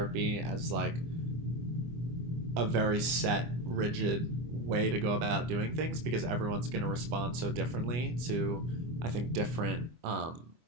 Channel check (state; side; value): late; left; 25 ms